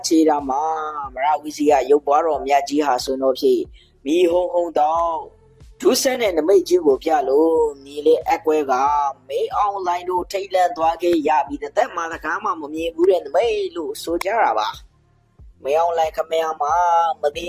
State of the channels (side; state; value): both; identical; correlation 1.00